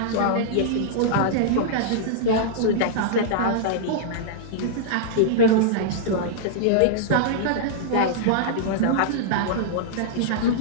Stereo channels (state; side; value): different; both; correlation -0.02